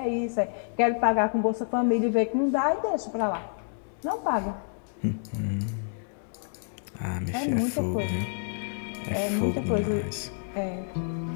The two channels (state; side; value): silent; right; digital silence